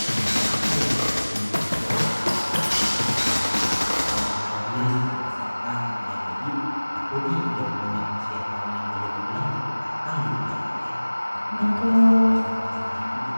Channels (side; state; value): both; inverted; correlation -1.00